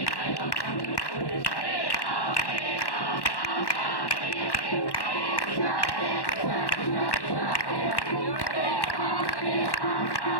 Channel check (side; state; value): right; late; 1.1 ms